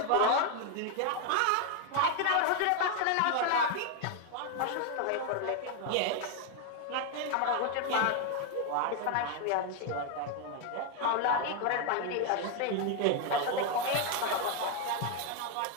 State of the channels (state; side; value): different; both; correlation 0.01